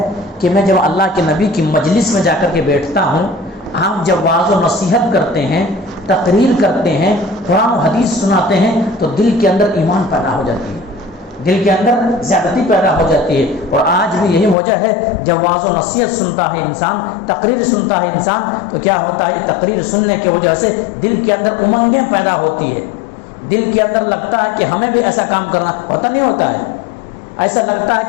کہ میں جب اللہ کے نبی کی مجلس میں جا کر کے بیٹھتا ہوں، آپ جب واعظ و نصیحت کرتے ہیں، تقریر کرتے ہیں، قرآن و حدیث سناتے ہیں، تو دل کے اندر ایمان پیدا ہو جاتی ہے، دل کے اندر زیادتی پیدا ہو جاتی ہے۔ اور آج بھی یہی وجہ ہے، جب واعظ و نصیحت سنتا ہے انسان، تقریر سنتا ہے انسان، تو کیا ہوتا ہے، تقریر سننے کی وجہ سے دل کے اندر امنگیں پیدا ہوتی ہے، دل کے اندر لگتا ہے کہ ہمیں بھی ایسا کام کرنا ہوتا، نہیں ہوتا ہے، ایسا لگتا ہے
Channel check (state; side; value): drops out; right; at 14.6 s